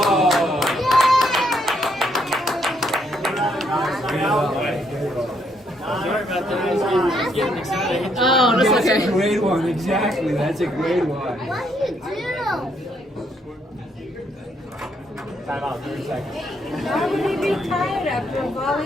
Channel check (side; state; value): both; normal; correlation 0.72